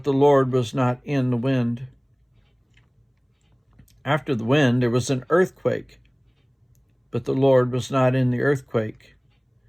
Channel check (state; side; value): identical; both; correlation 1.00